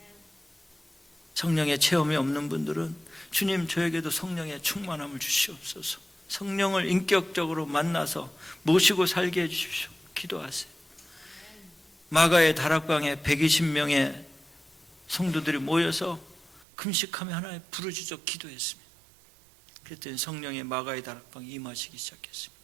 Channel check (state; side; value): drops out; left; at 16.7 s